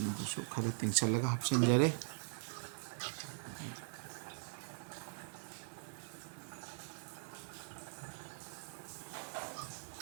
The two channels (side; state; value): left; silent; digital silence